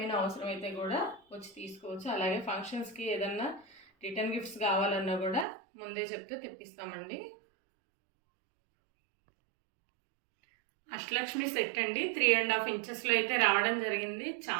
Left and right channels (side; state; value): left; drops out; at 5.5 s